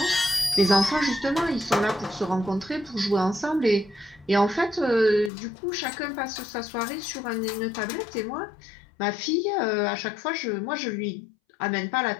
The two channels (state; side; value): drops out; right; at 5.3 s